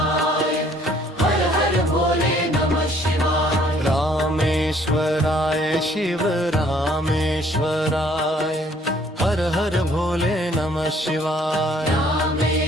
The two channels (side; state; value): both; normal; correlation 0.60